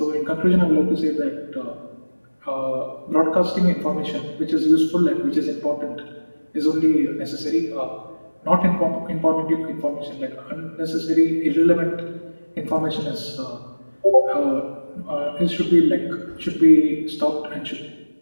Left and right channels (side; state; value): both; inverted; correlation -1.00